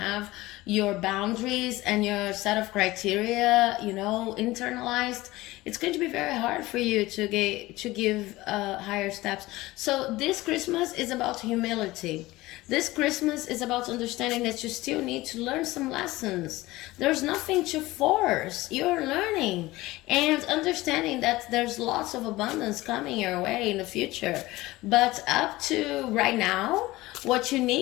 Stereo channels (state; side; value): quieter; right; 18.9 dB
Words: your boundaries and your set of criteria, internalized, it's going to be very hard for you to give higher steps. So this Christmas is about humility. This Christmas is about understanding that you still need to learn some lessons. There's nothing to force. You're learning and understanding that there's lots of abundance coming your way in the future. But up to right now, what you